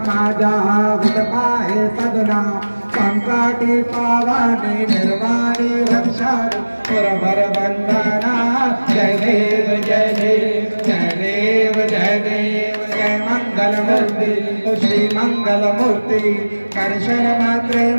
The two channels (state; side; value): inverted; both; correlation -1.00